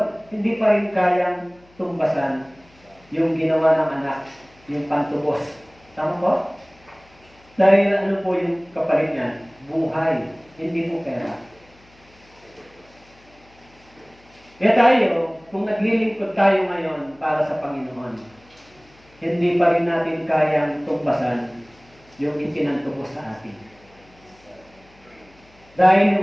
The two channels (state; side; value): noise; left; hum, 29 dB below the sound